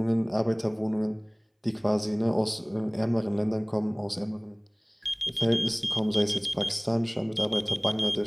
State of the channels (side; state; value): both; identical; correlation 1.00